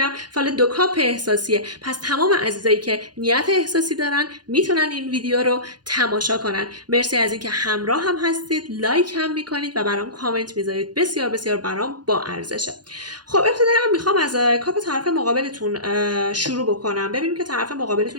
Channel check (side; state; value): left; late; 0.70 ms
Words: فال 2 کاپ احساسیه. پس تمام عزیزایی که نیت احساسی دارن میتونن این ویدیو رو تماشا کنن. مرسی از اینکه همراه هم هستید، لایک هم میکنید و برام کامنت میذارید. بسیار بسیار برام با ارزشه. خب ابتداً میخوام از کاپ طرف مقابلتون شروع بکنم. ببینیم که طرف